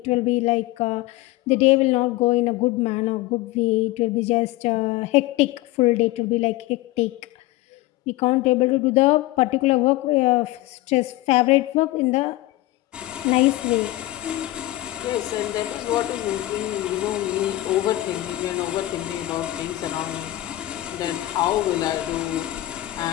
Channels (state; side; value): quieter; right; 17.3 dB